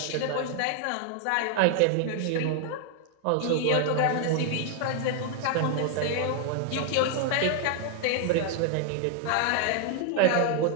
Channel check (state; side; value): different; both; correlation 0.00